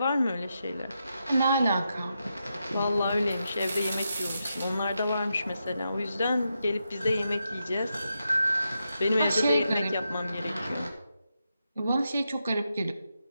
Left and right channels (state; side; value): inverted; both; correlation -0.85